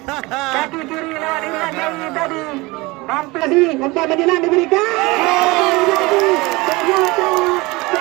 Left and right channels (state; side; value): quieter; left; 23.0 dB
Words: kaki kiri lewat Irwan Jawi tadi. Hampir sih umpan menjelang diberikan. Ternyata